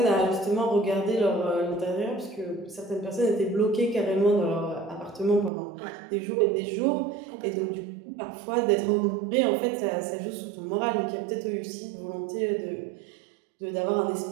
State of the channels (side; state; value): left; drops out; at 5.5 s